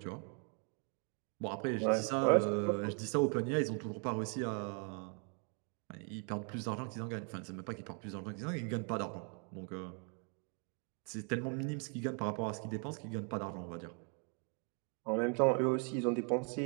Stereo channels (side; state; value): left; quieter; 39.6 dB